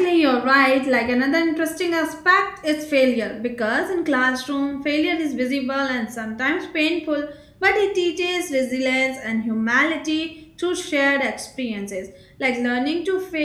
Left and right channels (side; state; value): both; identical; correlation 1.00